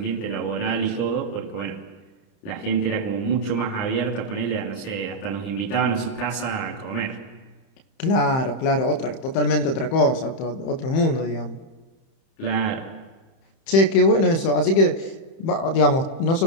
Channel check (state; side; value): late; right; 31 ms